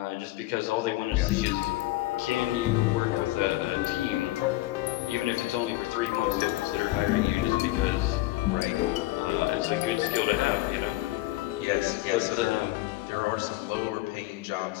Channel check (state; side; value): quieter; right; 18.1 dB